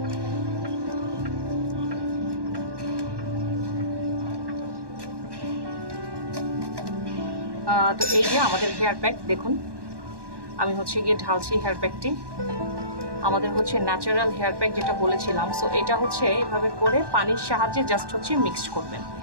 তো এই যে আমাদের হেয়ার প্যাক দেখুন, আমি হচ্ছে গিয়ে ঢালছি হেয়ার প্যাকটি। আমাদের হচ্ছে ন্যাচারাল হেয়ার প্যাক যেটা বলেছিলাম। সো এটা হচ্ছে এভাবে করে পানির সাহায্যে জাস্ট হচ্ছে মিক্সড করবেন।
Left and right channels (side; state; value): left; late; 1.1 ms